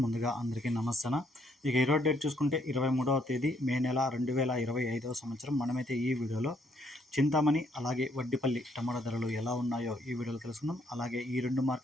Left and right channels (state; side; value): normal; both; correlation 0.70